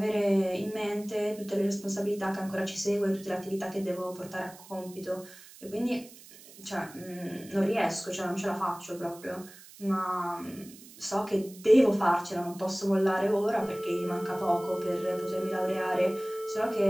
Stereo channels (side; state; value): right; noise; hiss, 20 dB below the sound